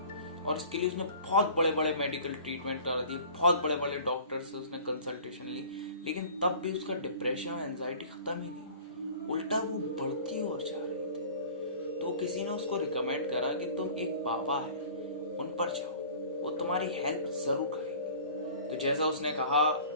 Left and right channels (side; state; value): both; inverted; correlation -0.45